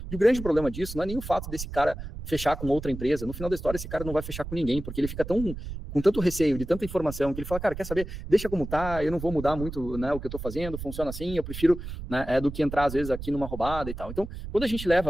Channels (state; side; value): noise; right; rumble, 9 dB below the sound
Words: E o grande problema disso não é nem o fato desse cara fechar com outra empresa. No final da história, esse cara não vai fechar com ninguém, porque ele fica com tanto receio de tanta informação que ele fala, cara, quer saber? Deixa como tá, eu não vou mudar muito, né, o que eu tô fazendo, funciona assim, eu prefiro, né, do que entrar às vezes aqui numa roubada e tal. Então, quando a gente